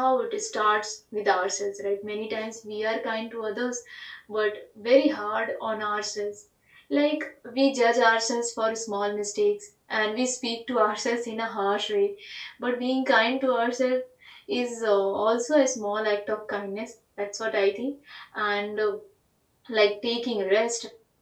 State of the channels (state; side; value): identical; both; correlation 1.00